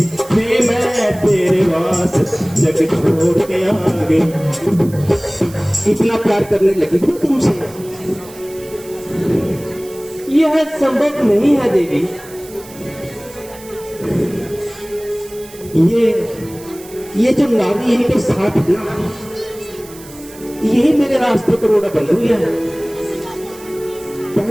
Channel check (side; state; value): right; noise; hiss, 19 dB below the sound